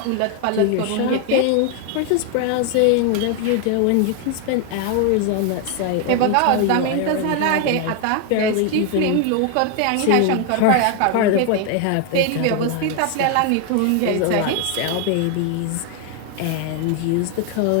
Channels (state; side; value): different; both; correlation 0.01